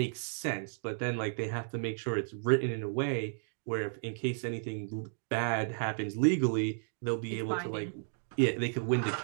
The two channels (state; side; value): silent; left; digital silence